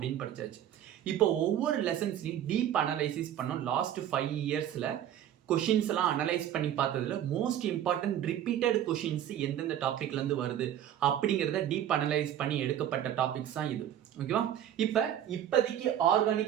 படித்தாச்சு. இப்போ ஒவ்வொரு லெசன்ஸ்லையும் டீப் அனலைசிஸ் பண்ணோம். லாஸ்ட் 5 இயர்ஸில் கொஷின்ஸ் எல்லாம் அனலைஸ் பண்ணி பார்த்ததுல மோஸ்ட் இம்பார்ட்டன்ட் ரிப்பீட்டட் கொஷின்ஸ் எந்தெந்த டாபிக்லேருந்து வருது அப்படிங்கிறத டீப் அனலைஸ் பண்ணி எடுக்கப்பட்ட டாபிக்ஸ் தான் இது. ஓகேவா? இப்போதைக்கு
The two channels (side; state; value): left; quieter; 10.8 dB